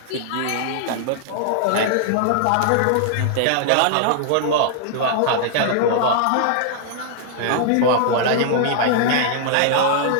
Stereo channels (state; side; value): different; both; correlation -0.01